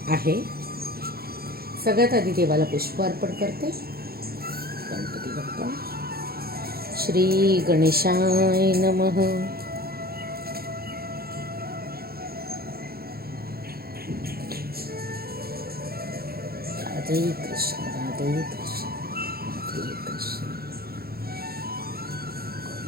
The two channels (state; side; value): late; left; 0.44 ms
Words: आहे। सगळ्यात आधी देवाला पुष्प अर्पण करते। गणपती बाप्पा। श्री गणेशाय नमः। राधे कृष्ण राधे कृष्ण